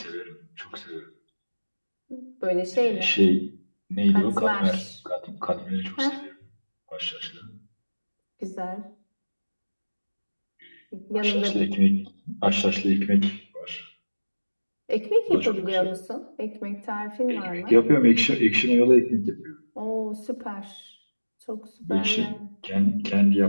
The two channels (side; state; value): both; inverted; correlation -1.00